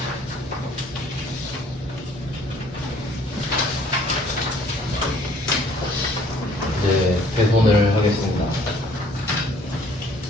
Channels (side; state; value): both; normal; correlation 0.58